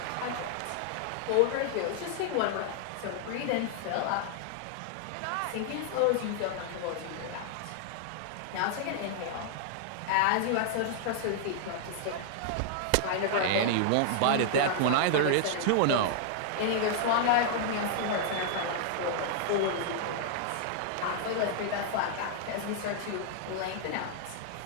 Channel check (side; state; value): both; different; correlation -0.01